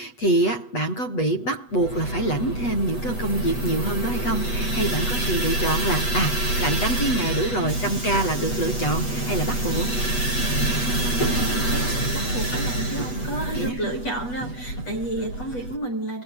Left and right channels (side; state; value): right; late; 8.2 ms